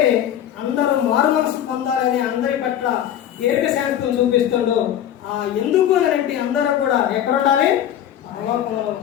అందరూ మారు మనసు పొందాలని అందరి పట్ల దీర్ఘశాంతం చూపిస్తుండో. ఎందుకు అని అంటే అందరూ కూడా ఎక్కడ ఉండాలి? పరలోకంలో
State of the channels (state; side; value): quieter; right; 10.7 dB